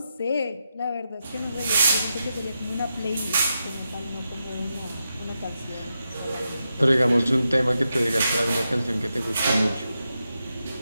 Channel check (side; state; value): both; inverted; correlation -0.87